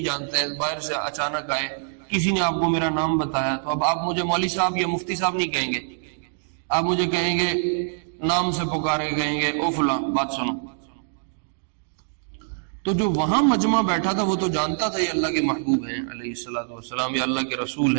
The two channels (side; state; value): left; silent; digital silence